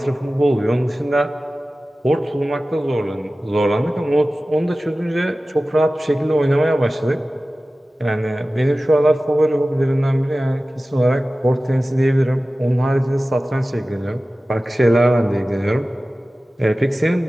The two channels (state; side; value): normal; both; correlation 0.96